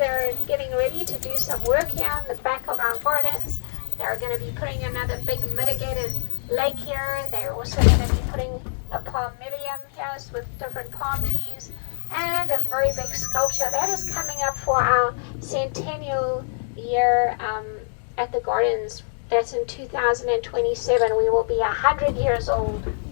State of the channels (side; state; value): right; silent; digital silence